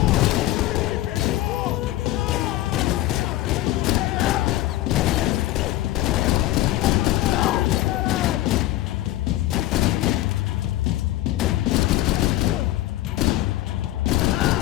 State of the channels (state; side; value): quieter; right; 15.6 dB